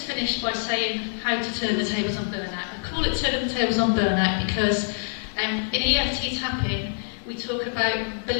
finish by saying how to turn the tables on burnout. I call it turning the tables on burnout because in EFT tapping we talk about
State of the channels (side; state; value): right; silent; 61 dB below the other